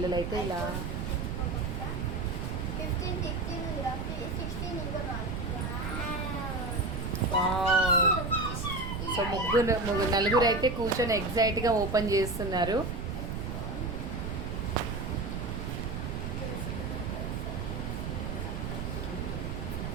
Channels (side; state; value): right; noise; rumble, 4 dB below the sound